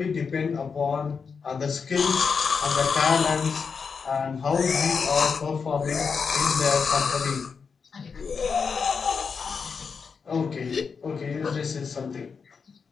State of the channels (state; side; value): quieter; right; 5.6 dB